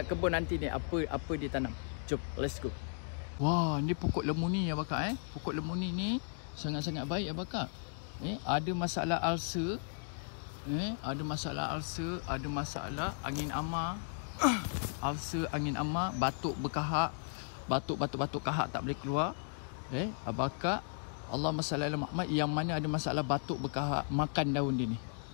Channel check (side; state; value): right; silent; digital silence